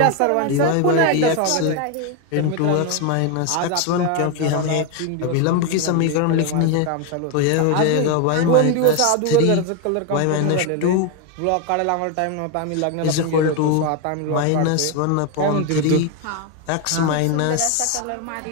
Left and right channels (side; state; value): both; different; correlation 0.01